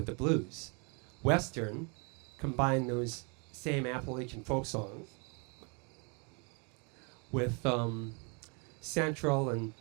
the blues. Western combined those same Appalachian folk songs with Central and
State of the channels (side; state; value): left; quieter; 34.5 dB